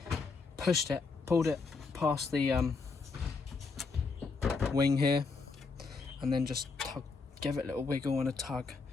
pushed it, pulled it past the wing here, and then just give it a little wiggle and a tug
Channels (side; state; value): right; quieter; 4.5 dB